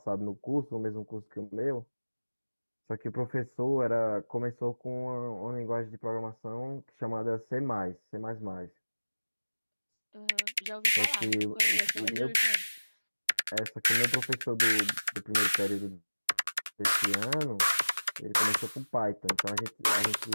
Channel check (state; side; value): inverted; both; correlation -1.00